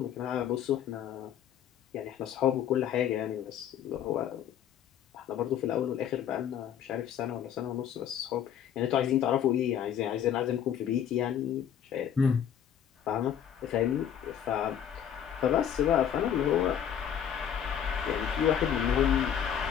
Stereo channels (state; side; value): quieter; right; 9.3 dB